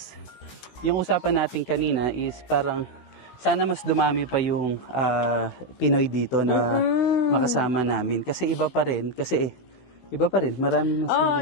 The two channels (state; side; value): late; right; 16 ms